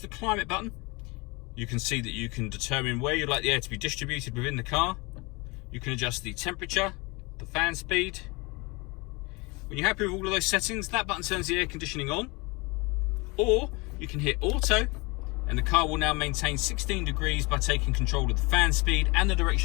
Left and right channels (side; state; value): right; quieter; 26.6 dB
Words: climate button, you can see that you can determine where you'd like the air to be distributed within the car. You can adjust the temperature, the fan speed. When you're happy with all of those settings, that button turns the air conditioning on. Or you can hit auto, and the car will now maintain 16 degrees by taking control of the fan speed and the